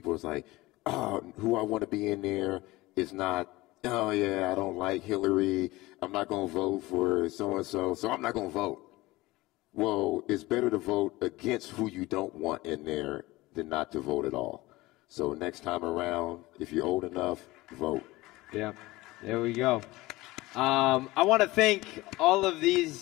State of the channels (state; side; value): quieter; right; 19.8 dB